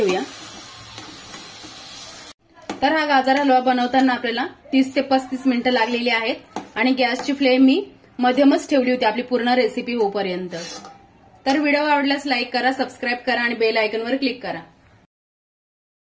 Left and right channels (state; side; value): identical; both; correlation 1.00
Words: तर हा गाजर हलवा बनवताना आपल्याला 30 ते 35 मिनिटं लागलेली आहेत आणि गॅसची फ्लेम मी मध्यमच ठेवली होती आपली पूर्ण रेसिपी होईपर्यंत। तर व्हिडिओ आवडल्यास लाईक करा, सबस्क्राईब करा आणि बेल आयकॉनवर क्लिक करा।